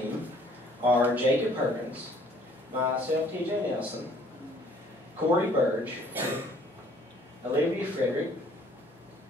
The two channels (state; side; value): normal; both; correlation 0.58